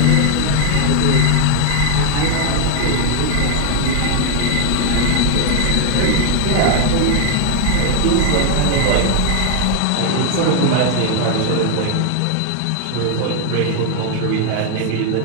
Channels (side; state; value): both; different; correlation 0.01